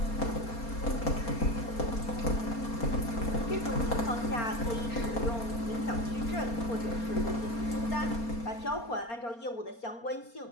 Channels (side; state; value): right; late; 4.3 ms